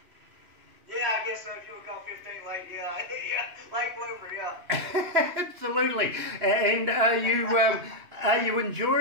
Yeah, I guess so. If you would call 15 late, yeah, yeah, late bloomer, yeah. Absolutely. And are you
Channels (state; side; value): late; left; 2.9 ms